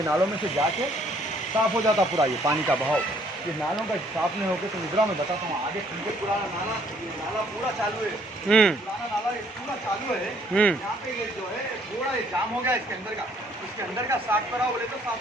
नालों में से जाके साफ हो जाता पूरा, ये पानी का बहाव। ये नालों का साफ नहीं होकर तो निद्रा में बताता हूँ आगे तुमको। पुराना नाला, ये नाला पूरा चालू है, पुराना नाला ये पूरा चालू है। यहाँ पे ये जो है पूरा ये जाम हो गया इसके अंदर का, इसके अंदर का साफ कराओ बोले तो साफ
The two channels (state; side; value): normal; both; correlation 0.63